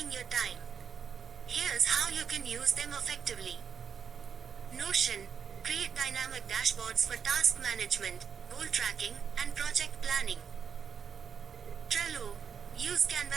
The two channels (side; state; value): left; quieter; 7.0 dB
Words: your time. Here's how you can use them effectively. Notion: create dynamic dashboards for task management, goal tracking, and project planning. Trello: use